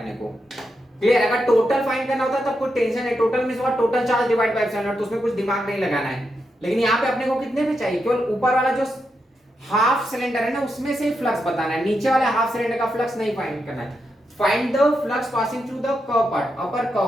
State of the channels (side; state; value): both; normal; correlation 0.85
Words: को। क्लियर, अगर टोटल फाइंड करना होता तब कोई टेंशन है, टोटल में से total charge divide by epsilon naught, तो उसमें कुछ दिमाग नहीं लगाना है, लेकिन यहाँ पे अपने को कितने पे चाहिए, केवल ऊपर वाला जो हाफ सिलेंडर है ना उसमें से ही फ्लक्स बताना है, नीचे वाले हाफ सिलेंडर का फ्लक्स नहीं फाइंड करना है। Find the flux passing through the curve part, upper